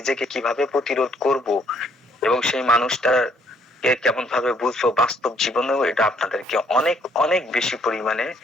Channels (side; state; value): both; normal; correlation 0.66